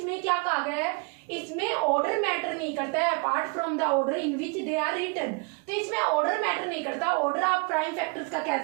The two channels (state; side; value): quieter; left; 32.9 dB